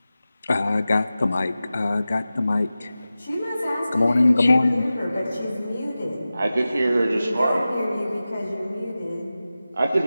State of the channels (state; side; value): inverted; both; correlation -0.95